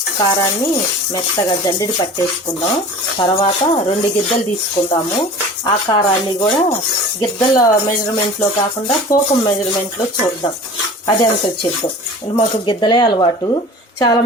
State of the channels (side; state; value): both; normal; correlation 0.40